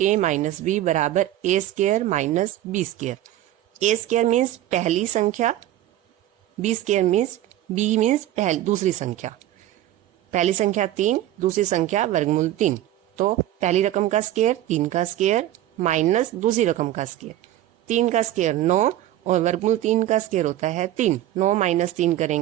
a minus b बराबर a square minus b square. a square means पहली संख्या, b square means b means दूसरी संख्या। पहली संख्या 3, दूसरी संख्या वर्गमूल 3। तो पहली रकम का स्क्वायर 3 का स्क्वायर माइनस दूसरी रकम का स्क्वायर। 3 का स्क्वायर 9 और वर्गमूल 3 का स्क्वायर होता है 3। 9 माइनस 3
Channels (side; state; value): left; quieter; 13.6 dB